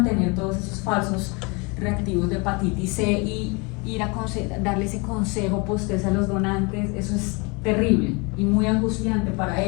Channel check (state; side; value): quieter; right; 29.7 dB